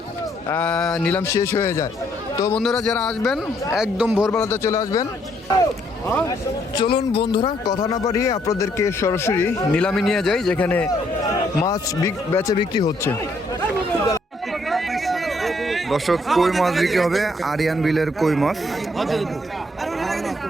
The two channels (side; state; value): both; normal; correlation 0.70